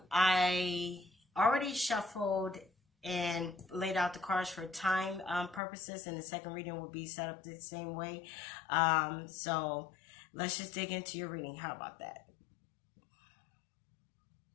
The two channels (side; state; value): right; drops out; at 5.6 s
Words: already shuffled and laid out the cards for time purposes, and the second reading will be set up the same way. So let's just dig into your reading. How about that?